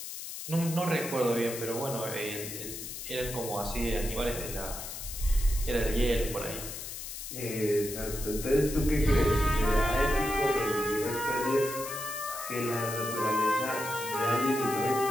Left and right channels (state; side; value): noise; left; hiss, 8 dB below the sound